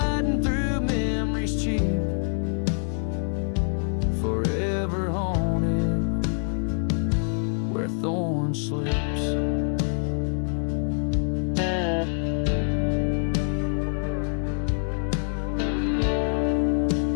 through memories cheap, forever haunted where thorn sleeps.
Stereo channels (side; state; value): right; silent; 61 dB below the other